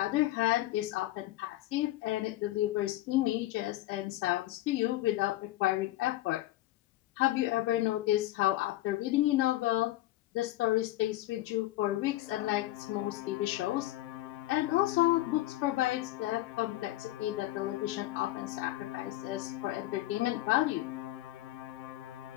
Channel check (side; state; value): right; quieter; 16.0 dB